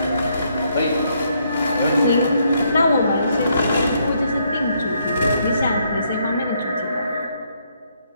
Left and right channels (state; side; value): inverted; both; correlation -0.73